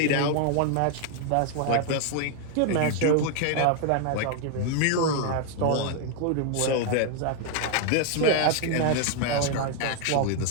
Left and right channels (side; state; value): both; different; correlation 0.00